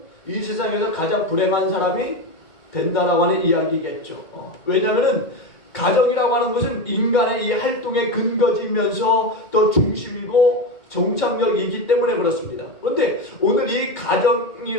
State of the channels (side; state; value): right; late; 2.2 ms